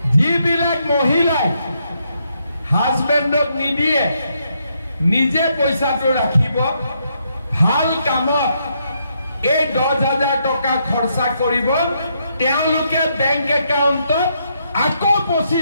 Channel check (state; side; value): inverted; both; correlation -0.77